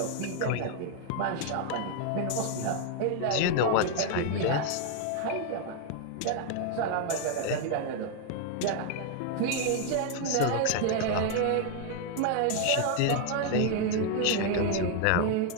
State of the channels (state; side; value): different; both; correlation 0.00